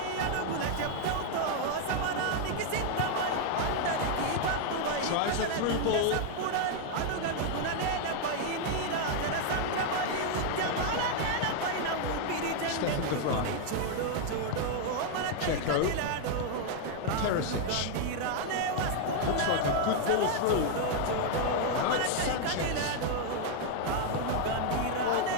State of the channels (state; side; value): different; both; correlation 0.00